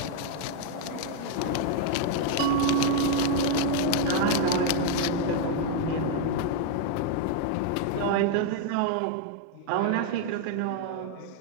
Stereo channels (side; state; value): both; different; correlation 0.00